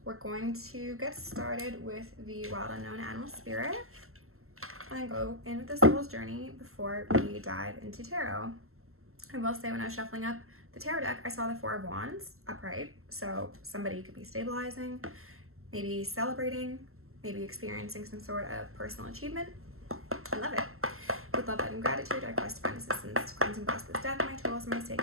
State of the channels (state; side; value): late; left; 0.62 ms